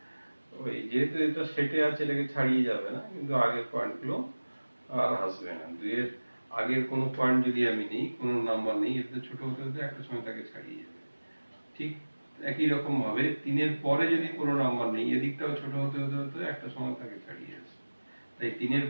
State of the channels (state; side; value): inverted; both; correlation -1.00